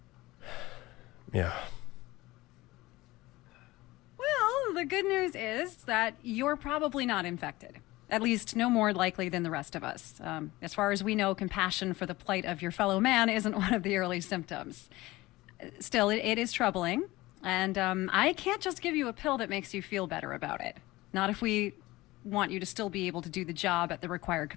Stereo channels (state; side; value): quieter; right; 19.4 dB